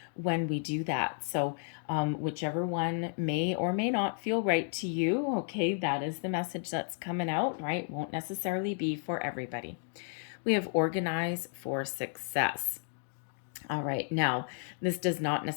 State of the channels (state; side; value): silent; right; 56 dB below the other